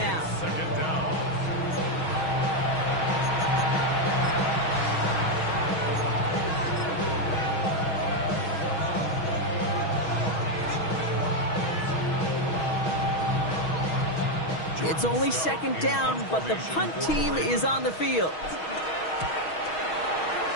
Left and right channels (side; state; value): right; late; 6.3 ms